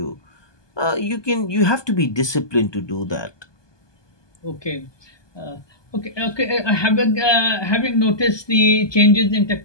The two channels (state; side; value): late; right; 1.2 ms